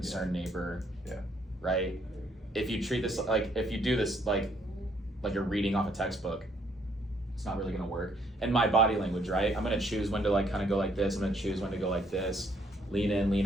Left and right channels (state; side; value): normal; both; correlation 0.68